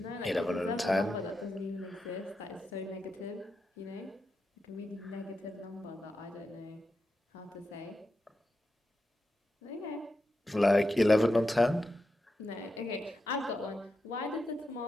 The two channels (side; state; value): both; normal; correlation 0.88